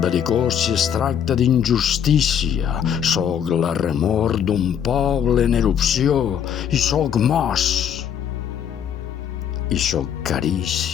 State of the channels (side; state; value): right; quieter; 8.6 dB